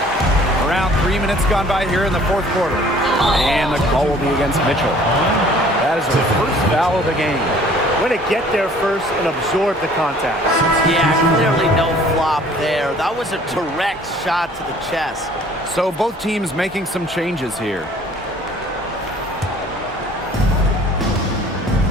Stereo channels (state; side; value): normal; both; correlation 0.53